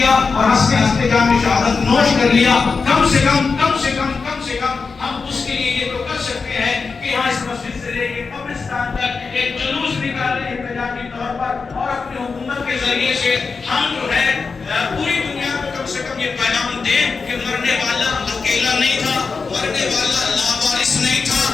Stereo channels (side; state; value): right; quieter; 4.8 dB